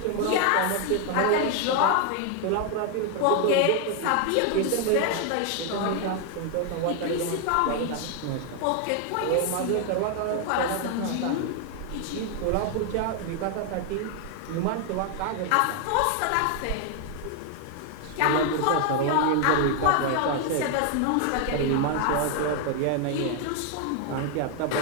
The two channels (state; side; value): different; both; correlation 0.01